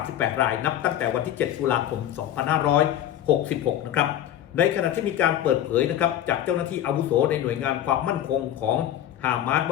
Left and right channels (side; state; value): right; quieter; 11.5 dB